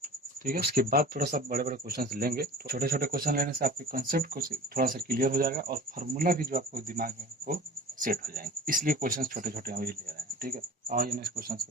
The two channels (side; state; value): both; normal; correlation 0.41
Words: ठीक है, उसके बाद थोड़ा सा बड़े बड़े क्वेश्चन लेंगे। तो छोटे छोटे क्वेश्चन लेने से आपके कंसेप्ट को थोड़ा सा क्लियर हो जाएगा, और फार्मूला भी जो आपको दिमाग में वो सेट हो जाएंगे, इसलिए क्वेश्चन छोटे छोटे अभी ले रहे हैं, ठीक है। और नेक्स्ट क्वेश्चन